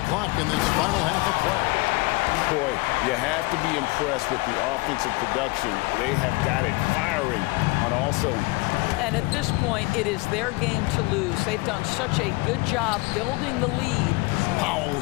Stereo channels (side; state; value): right; quieter; 24.4 dB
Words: clock in this final half of play. Boy, you have to be impressed with the offensive production. They have got it firing on all cylinders. And at this point, it is their game to lose. They've done such a good job building the lead. Powell